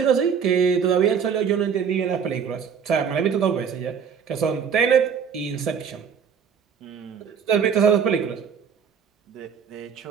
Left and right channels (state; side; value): quieter; left; 7.0 dB